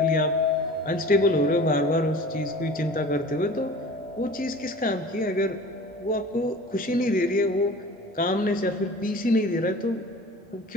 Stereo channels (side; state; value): both; normal; correlation 0.41